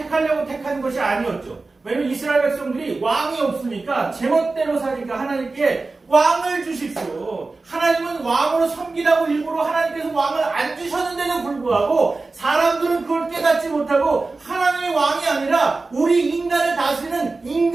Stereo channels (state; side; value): quieter; left; 3.6 dB